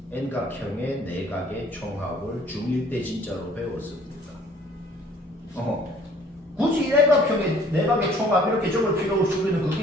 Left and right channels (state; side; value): normal; both; correlation 0.56